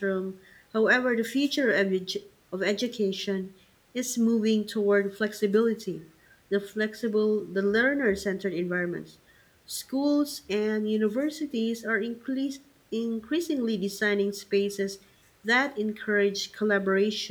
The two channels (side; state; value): both; identical; correlation 1.00